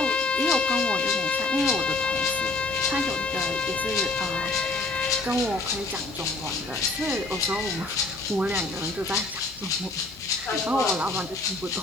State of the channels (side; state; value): right; quieter; 3.3 dB